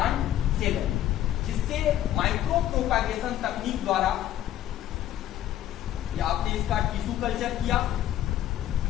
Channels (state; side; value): quieter; right; 12.4 dB